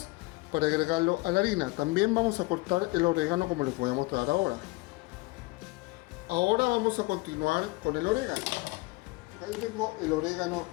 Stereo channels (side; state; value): right; quieter; 23.9 dB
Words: para agregarlo a la harina. También vamos a cortar el orégano, como les voy a mostrar ahora. Ahora vamos a continuar con el orégano. Ahí tengo el orégano